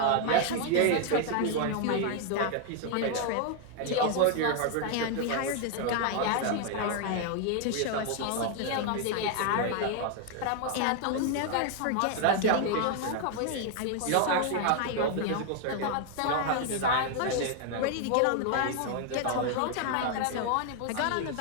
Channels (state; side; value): different; both; correlation 0.00